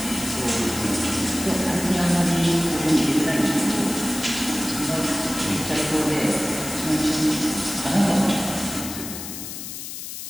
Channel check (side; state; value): left; noise; hiss, 9 dB below the sound